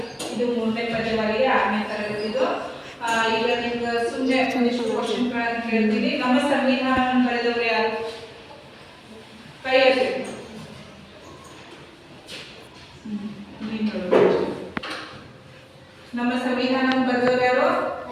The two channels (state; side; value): identical; both; correlation 1.00